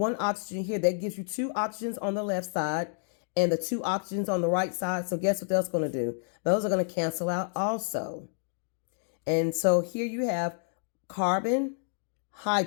oxygen here. That gives you 2 oxygens on the left side and the 2 oxygens on the right side. So guess what that's going to do? Those are going to cancel out also. And so here you have carbon,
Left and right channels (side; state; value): right; silent; digital silence